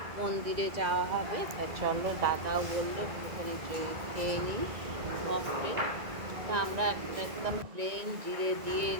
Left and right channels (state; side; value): late; left; 1.9 ms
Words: মন্দিরে যাওয়া হবে। তা চলো, দাদাও বললো ওখানে খেয়ে নিই মকটেল। তা আমরা একদম প্লেন জিরে দিয়ে